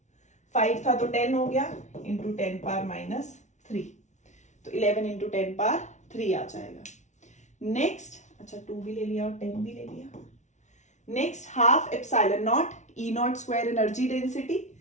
5 था तो 10 हो गया, इंटू 10 पावर -3, तो 11 इंटू 10 पावर 3 आ जाएगा। नेक्स्ट, अच्छा 2 भी ले लिया और 10 भी ले लिया। Next half epsilon naught E naught square energy density,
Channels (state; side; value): late; right; 0.34 ms